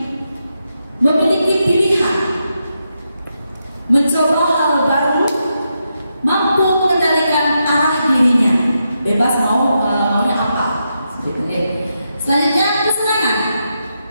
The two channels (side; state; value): both; inverted; correlation -0.84